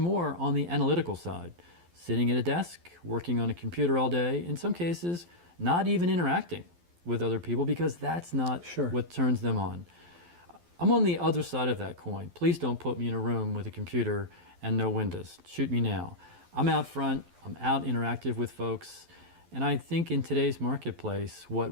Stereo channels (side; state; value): left; late; 12 ms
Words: on the analytical side, sitting at a desk, working on a computer all day, in some cases not even interacting with other people because that's not what turns them on. I'm on the other side of that coin. Please don't put me in a room with a computer and no windows. Shoot me now. I'm out front, I'm out interactive with folks, and I think in today's marketplace, what